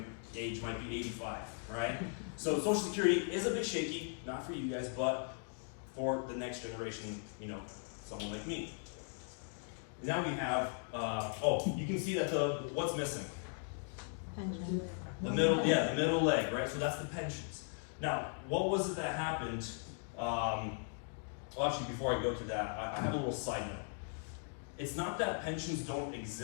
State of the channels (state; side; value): silent; right; 52 dB below the other